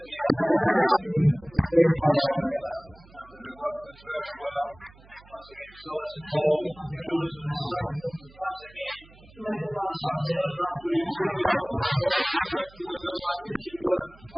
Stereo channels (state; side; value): noise; right; hum, 24 dB below the sound